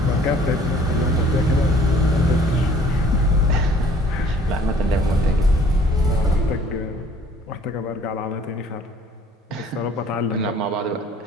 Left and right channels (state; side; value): normal; both; correlation 0.55